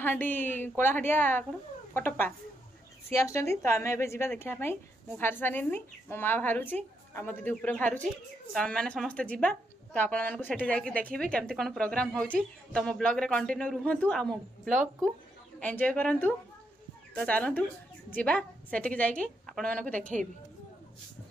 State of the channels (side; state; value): both; normal; correlation 0.79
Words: कौन कटप्पा सी आस तो आम ए जा देखापी मुझे बाहर सारी मो माँ बाहरुची आ मो दीदी ऊपर बाहरुची तो आम मैंने समस्ते जा तो आपको सेठी जाकि देखिए केमती कौन प्रोग्राम होची तो मो ब्लॉग रे कंटिन्यू रुहतु आ मो ब्लॉग को एंजॉय करंतु तो चलतु जा सेठी जाकि आपण मानक देखैबी